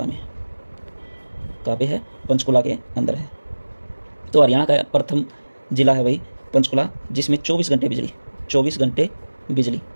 में है। कहाँ पे है? पंचकुला के अंदर है। तो हरियाणा का प्रथम जिला है भाई पंचकुला, जिसमें 24 घंटे बिजली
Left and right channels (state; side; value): inverted; both; correlation -1.00